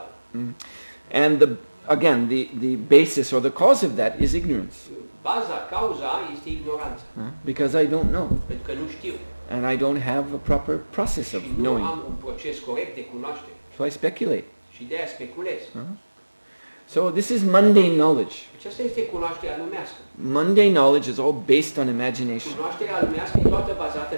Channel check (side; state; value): both; inverted; correlation -1.00